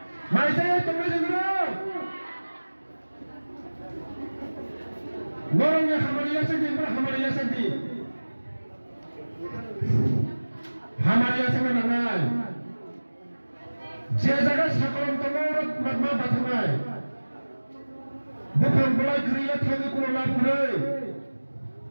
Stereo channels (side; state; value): both; inverted; correlation -1.00